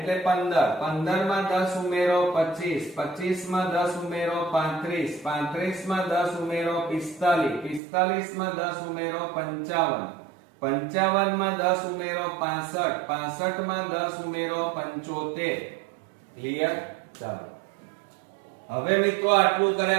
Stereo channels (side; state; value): left; drops out; at 7.8 s